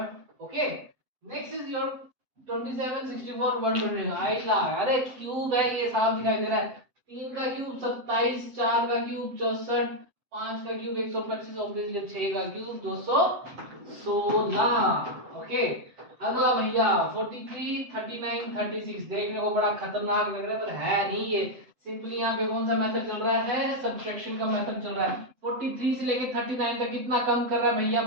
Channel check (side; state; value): left; late; 7.8 ms